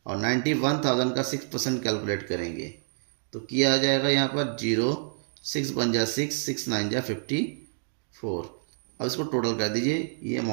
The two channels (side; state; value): left; silent; digital silence